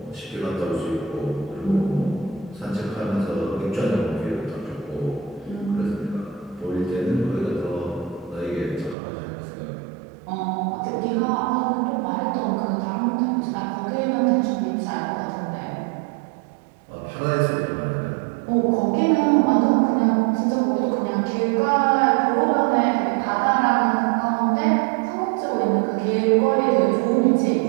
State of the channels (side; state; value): left; drops out; at 9.0 s